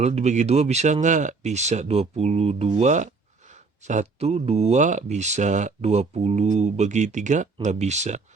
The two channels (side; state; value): left; quieter; 4.2 dB